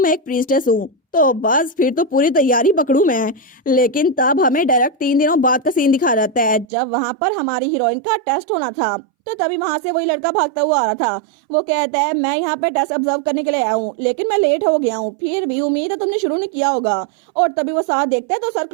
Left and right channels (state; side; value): drops out; left; at 6.7 s